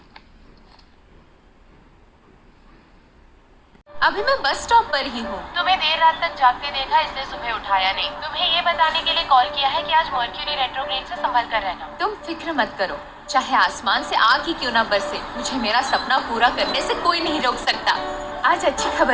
अभी मैं बस स्टॉप पर ही हूँ। तुम्हें देर रात तक जागते देखा, इसलिए सुबह उठाया नहीं। तुम्हें ये बताने के लिए कॉल किया है कि आज मर्क्यूरी रेट्रोग्रेड से संभल कर रहना। तुम फिक्र मत करो, चाहे आसमान से आग ही क्यों ना बरसे, मुझे मेरा सपना पूरा करने से कोई नहीं रोक सकता। आज अच्छी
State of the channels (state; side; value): identical; both; correlation 1.00